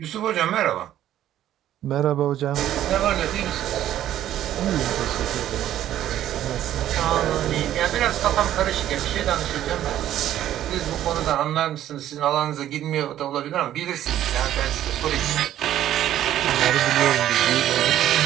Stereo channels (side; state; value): left; quieter; 12.1 dB